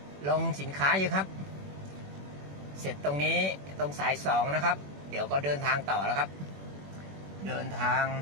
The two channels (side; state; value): left; late; 21 ms